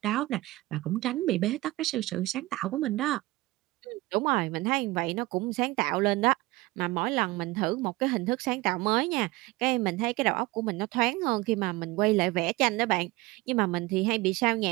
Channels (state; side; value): quieter; left; 20.5 dB